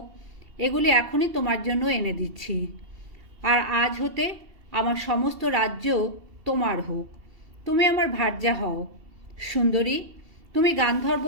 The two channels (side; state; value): left; late; 2.7 ms